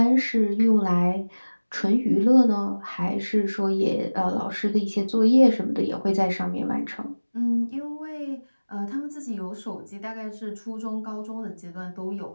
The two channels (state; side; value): inverted; both; correlation -1.00